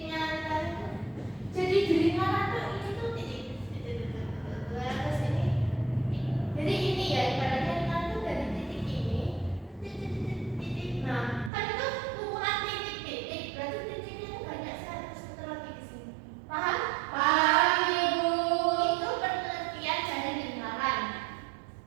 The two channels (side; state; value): left; drops out; at 11.5 s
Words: lingkaran itu. Jadi di lingkaran itu ini tuh titik ke sini. Jadi ini ya ibaratnya lingkaran itu dari titik ini titik. Nah kan itu kumpulan titik-titik. Berarti titiknya itu banyak sekali sebentar lagi di sini. Paham? Paham Ibu. Itu pengertian dari lingkaran.